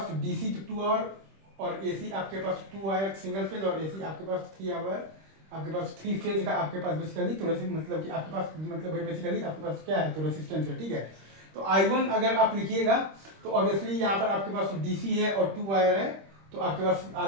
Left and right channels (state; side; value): late; left; 26 ms